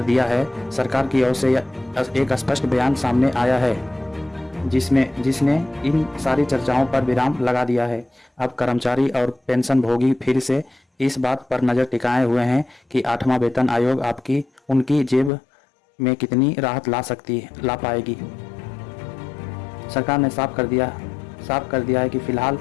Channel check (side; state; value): right; drops out; at 15.3 s